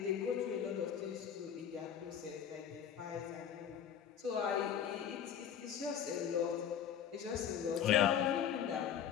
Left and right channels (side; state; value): right; quieter; 8.8 dB